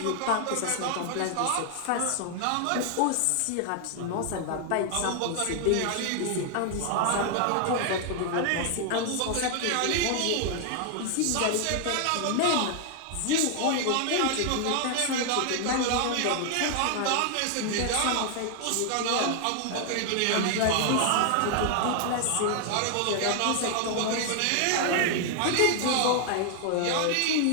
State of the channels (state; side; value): different; both; correlation 0.00